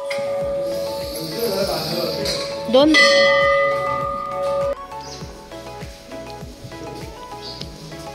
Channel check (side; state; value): both; identical; correlation 1.00